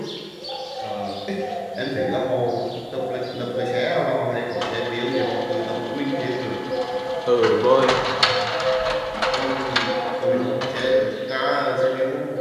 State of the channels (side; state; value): both; identical; correlation 1.00